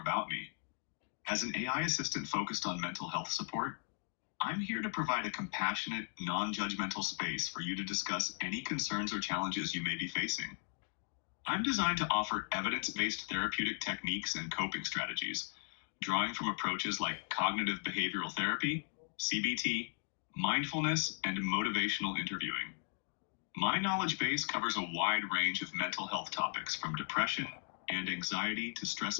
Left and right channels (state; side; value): silent; right; 53 dB below the other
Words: me. As an AI assistant focused on mental health support, I'm here to provide a compassionate, non-judgmental space for you to discuss any concerns or challenges you may be facing. I'm designed to offer evidence-based therapeutic techniques and coping strategies, drawing from approaches like cognitive behavioral therapy, CBT, mindfulness, and motivational interviewing. My knowledge base covers a wide range of mental health topics from depression and anxiety to